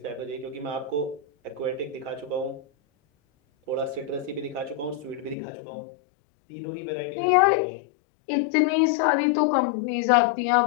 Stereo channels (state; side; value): drops out; right; at 5.4 s